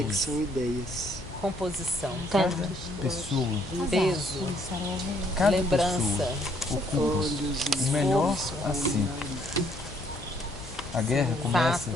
Pouso. que são ideias. Composição. Pessoa, Peso. Começaram a ouvir. cada Lembrança. pessoa ocupa Olhos o e melhor assento. A guerra começa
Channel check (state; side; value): normal; both; correlation 0.67